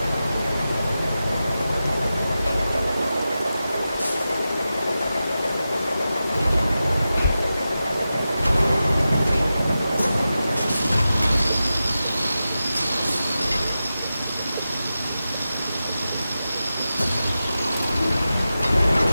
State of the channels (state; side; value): inverted; both; correlation -0.93